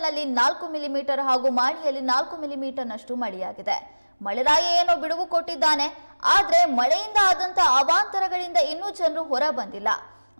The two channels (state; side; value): inverted; both; correlation -1.00